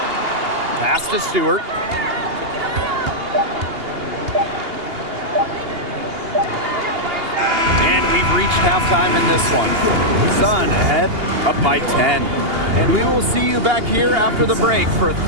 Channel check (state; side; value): late; left; 2.8 ms